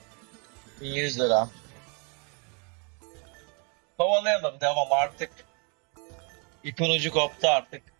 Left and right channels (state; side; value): quieter; left; 35.0 dB